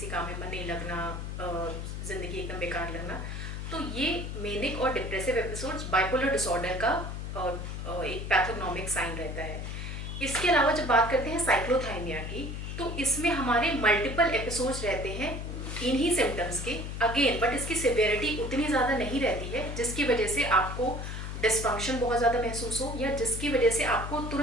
काम में मन नहीं लगना, जिंदगी एकदम बेकार लगना, तो ये मेनिक और डिप्रेसिव एपिसोड्स बाइपोलर डिसऑर्डर का एक पैथोग्नोमिक साइन रहता है। इसके अलावा जब बात करते हैं साइक्लोथाइमिया की, तो इसमें हमारे मल्टीपल एपिसोड्स रहते हैं इन्हीं सिम्टम्स के अगेन, बट इसकी सिवियरिटी उतनी ज़्यादा नहीं रहती है जिसकी वजह से आपको डिस्फंक्शन बहुत ज़्यादा महसूस हो या जिसकी वजह से आपको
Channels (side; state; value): left; noise; hum, 6 dB below the sound